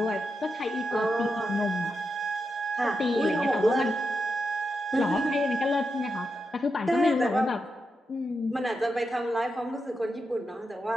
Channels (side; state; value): both; normal; correlation 0.87